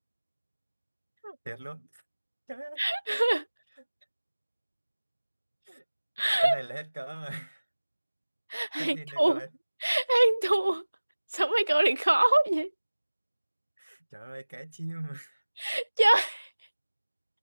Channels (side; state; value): both; inverted; correlation -1.00